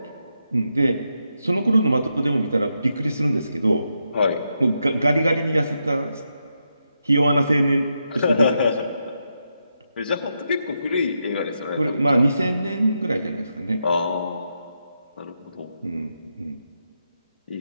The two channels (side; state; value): both; inverted; correlation -0.84